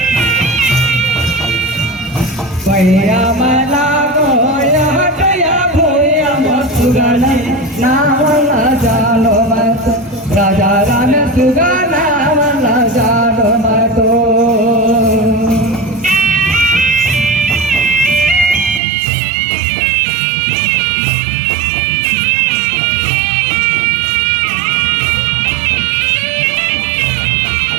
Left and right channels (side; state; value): left; drops out; at 18.8 s